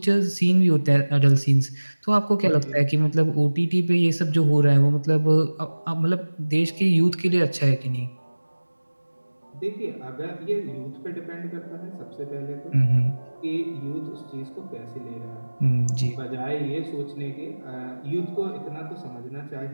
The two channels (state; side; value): inverted; both; correlation -1.00